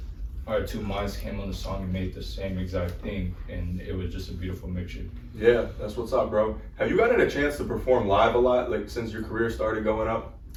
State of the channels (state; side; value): identical; both; correlation 1.00